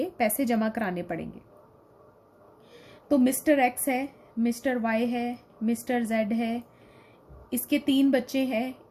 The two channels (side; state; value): both; identical; correlation 1.00